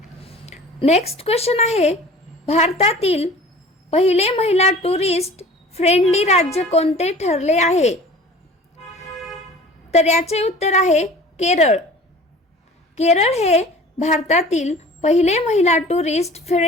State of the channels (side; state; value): both; normal; correlation 0.44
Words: नेक्स्ट क्वेश्चन आहे, भारतातील पहिले महिला टुरिस्ट फ्रेंडली राज्य कोणते ठरले आहे? तर याचे उत्तर आहे केरळ. केरळ हे भारतातील पहिले महिला टुरिस्ट